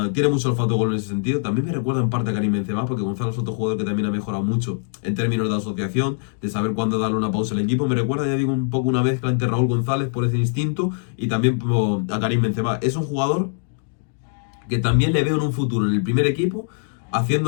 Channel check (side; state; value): right; silent; digital silence